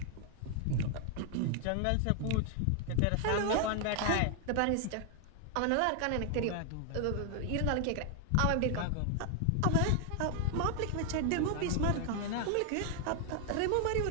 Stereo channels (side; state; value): both; different; correlation 0.00